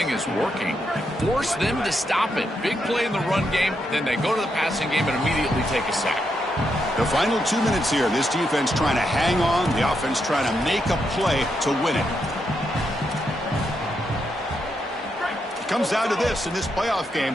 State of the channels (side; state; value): both; normal; correlation 0.81